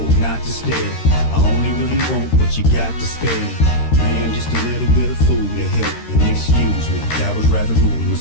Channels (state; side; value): late; right; 13 ms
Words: not to stare. I only really want what you got to spare. Man, just a little bit of food to help. And excuse me, that was rather rude of